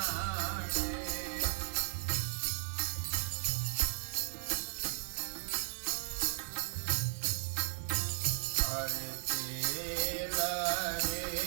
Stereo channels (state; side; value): silent; left; 54 dB below the other